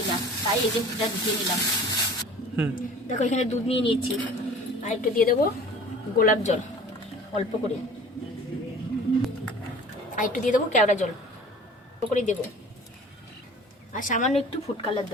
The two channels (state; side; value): normal; both; correlation 0.45